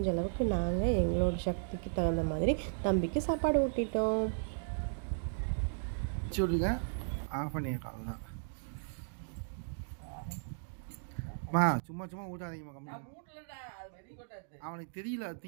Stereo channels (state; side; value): silent; left; digital silence